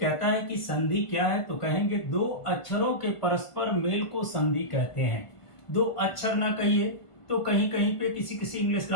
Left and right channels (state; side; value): late; right; 1.5 ms